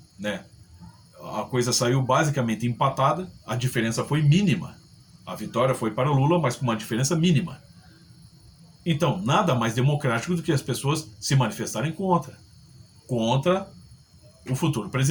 né, a coisa saiu basicamente empatada, a diferença foi mínima. A vitória foi para o Lula, mas com uma diferença mínima. Então, nada mais democrático do que as pessoas se manifestarem contra o futuro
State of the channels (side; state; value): both; identical; correlation 1.00